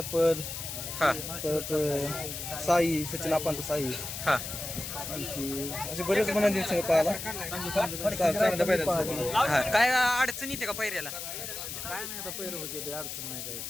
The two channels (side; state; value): left; noise; hiss, 7 dB below the sound